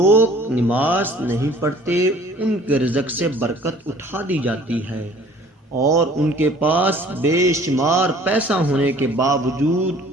نماز نہیں پڑھتے ان کے رزق سے برکت اٹھا دی جاتی ہے اور ان کے پاس بے شمار پیسہ ہونے کے باوجود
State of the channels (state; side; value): normal; both; correlation 0.52